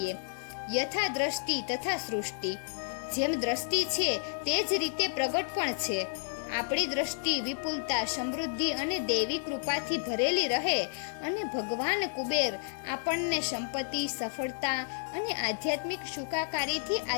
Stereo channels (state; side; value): silent; right; digital silence